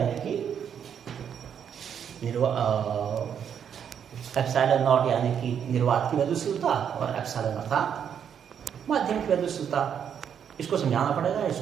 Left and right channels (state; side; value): quieter; left; 8.2 dB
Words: कि एप्सिलॉन नॉट यानी कि निर्वात की वैद्युतशीलता, और एप्सिलॉन अर्थात माध्यम की वैद्युतशीलता, इसको समझाना पड़ेगा।